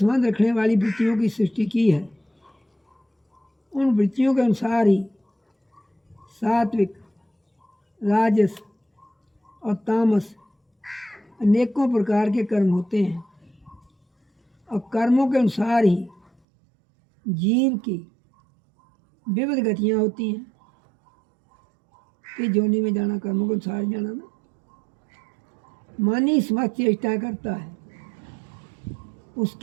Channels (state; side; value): drops out; left; at 16.3 s